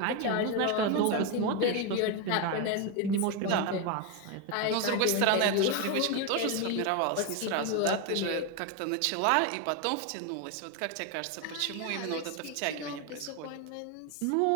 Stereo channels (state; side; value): different; both; correlation 0.02